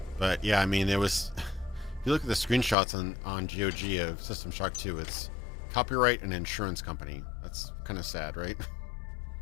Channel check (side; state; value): right; drops out; at 2.8 s